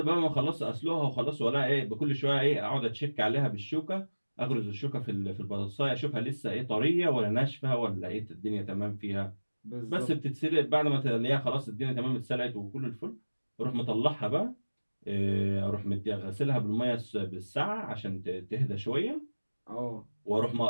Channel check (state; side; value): inverted; both; correlation -1.00